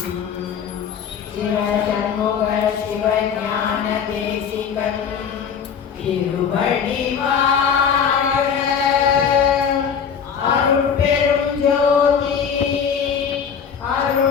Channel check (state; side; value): quieter; right; 7.2 dB